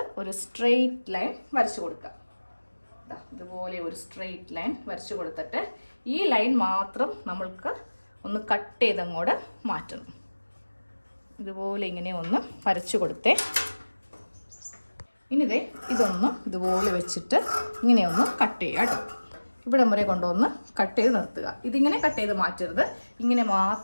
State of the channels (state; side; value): inverted; both; correlation -1.00